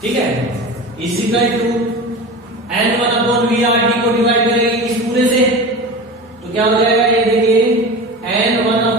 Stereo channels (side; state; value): both; normal; correlation 0.31